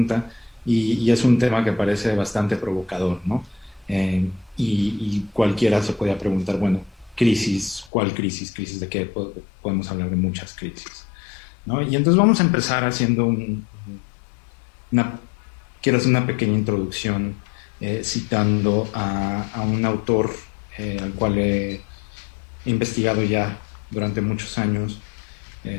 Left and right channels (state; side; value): drops out; right; at 7.9 s